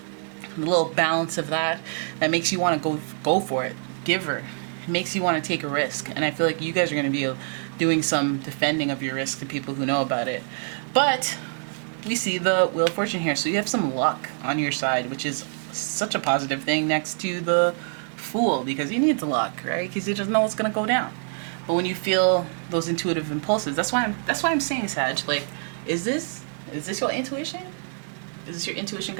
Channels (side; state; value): left; silent; 61 dB below the other